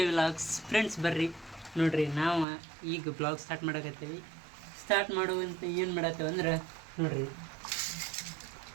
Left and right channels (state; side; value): drops out; left; at 2.5 s